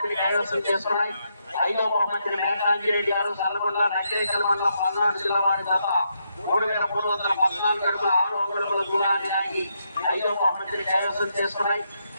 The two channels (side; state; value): both; inverted; correlation -0.79